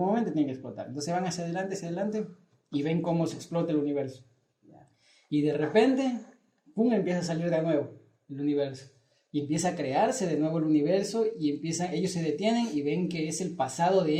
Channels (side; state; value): both; identical; correlation 1.00